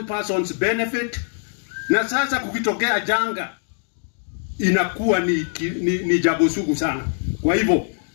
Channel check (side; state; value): right; silent; digital silence